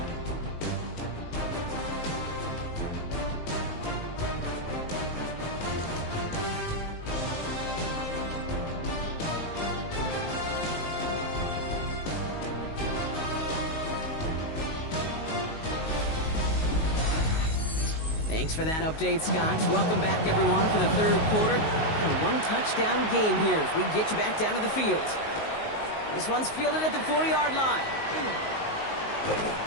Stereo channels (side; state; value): right; late; 19 ms